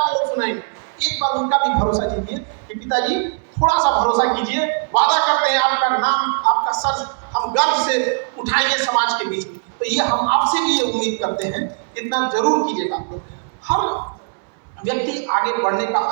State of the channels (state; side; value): silent; left; 66 dB below the other